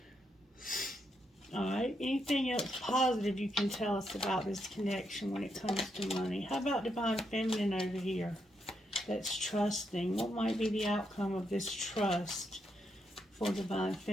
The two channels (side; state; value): both; normal; correlation 0.80